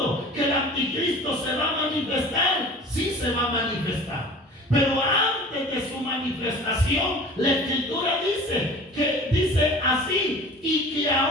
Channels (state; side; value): normal; both; correlation 0.42